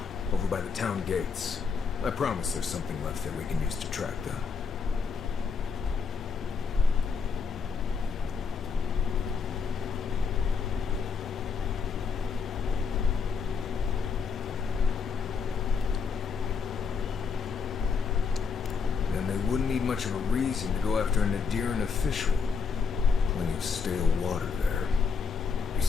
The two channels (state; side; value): quieter; right; 5.5 dB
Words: over by the town gates. I promise there's something left that we can use to track them. Then they wouldn't need much of a reason to go after an Adiran official. Plenty of stale water there.